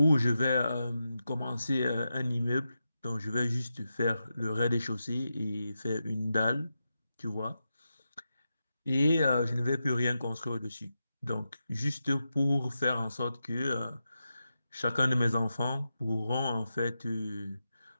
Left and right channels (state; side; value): inverted; both; correlation -0.89